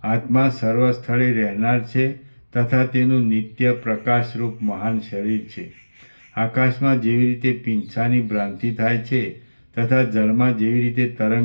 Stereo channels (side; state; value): both; inverted; correlation -1.00